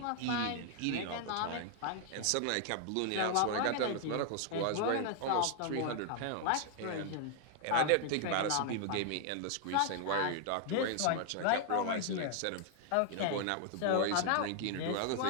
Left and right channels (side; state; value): both; different; correlation 0.00